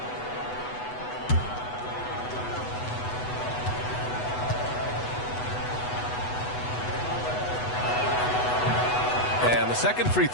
And the second free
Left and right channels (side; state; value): right; late; 8.1 ms